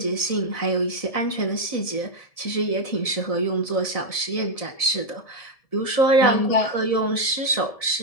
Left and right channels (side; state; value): right; late; 1.7 ms